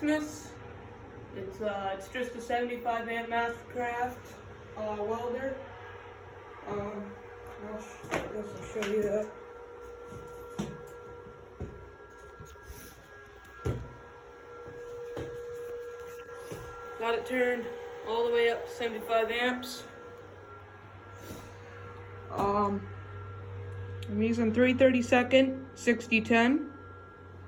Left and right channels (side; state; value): both; identical; correlation 1.00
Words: It's just a 75 amp Mastercraft welder. I guess I'll show you that. Got it turned all the way up to 75 amps. I'm using 3/32 6010,